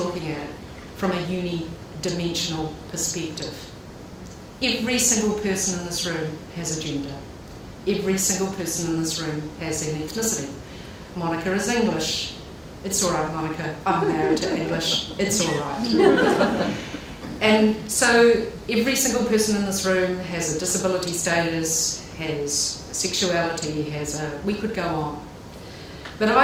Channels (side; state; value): both; identical; correlation 1.00